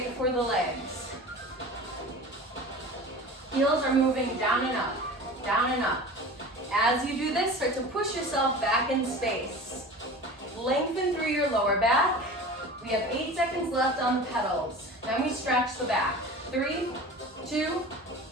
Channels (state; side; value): normal; both; correlation 0.36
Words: for the legs. Heels are moving down and up, down and up. As you do this, start to push yourself back in space. Lengthen through your lower back. We have 8 seconds left on the pedals. Then we stretch the back. 3, 2,